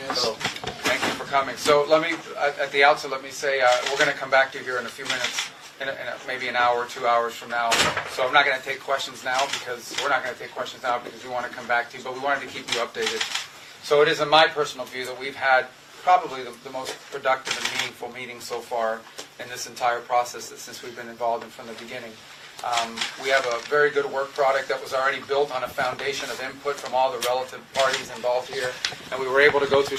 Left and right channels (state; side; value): identical; both; correlation 1.00